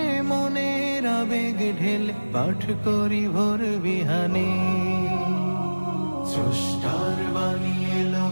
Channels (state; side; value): inverted; both; correlation -1.00